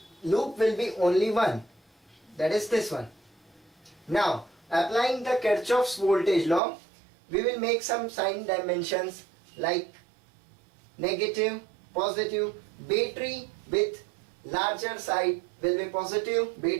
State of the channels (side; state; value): left; drops out; at 6.6 s